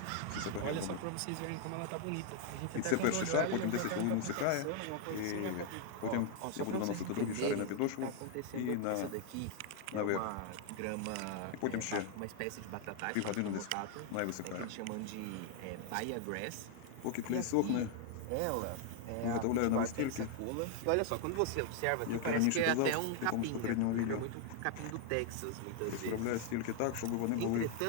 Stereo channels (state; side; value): different; both; correlation 0.00